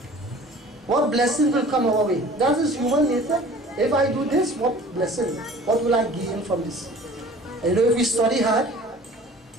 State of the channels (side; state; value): both; normal; correlation 0.46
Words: What blessing will come our way? That is human nature. If I do this, what blessing? What will I gain from this? And you know, if we study hard,